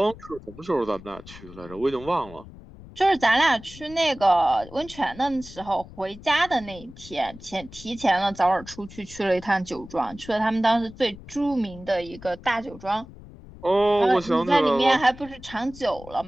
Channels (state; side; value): noise; left; rumble, 18 dB below the sound